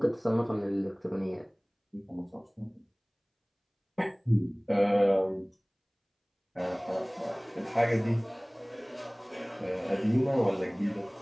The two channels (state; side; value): identical; both; correlation 1.00